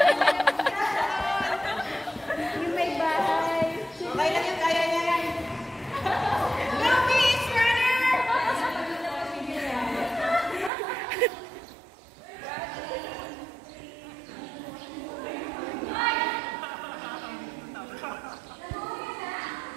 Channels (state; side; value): drops out; left; at 10.7 s